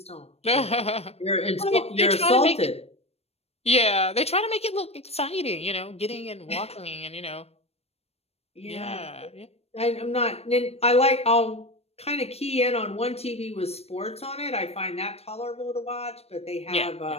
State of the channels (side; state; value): right; late; 0.30 ms